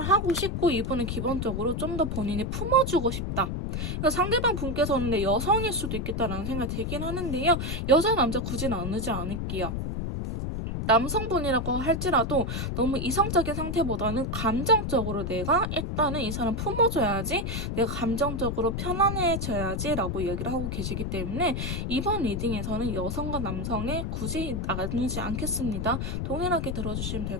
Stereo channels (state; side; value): noise; left; rumble, 2 dB below the sound